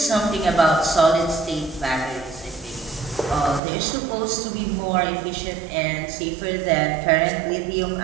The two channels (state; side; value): drops out; left; at 3.6 s